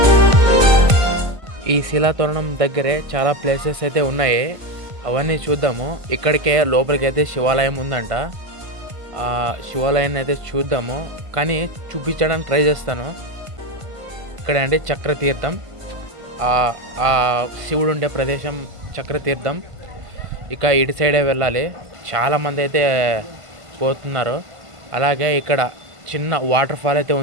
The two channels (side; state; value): left; late; 1.5 ms